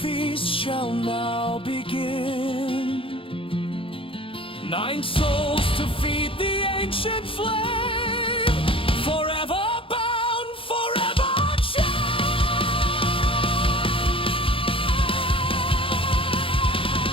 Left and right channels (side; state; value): right; late; 0.26 ms